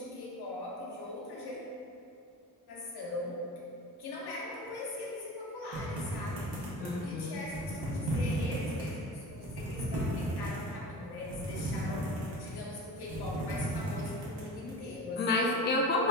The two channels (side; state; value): both; normal; correlation 0.32